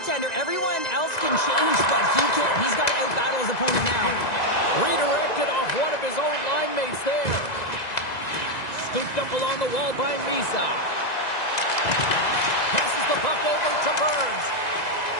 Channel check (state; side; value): late; right; 1.9 ms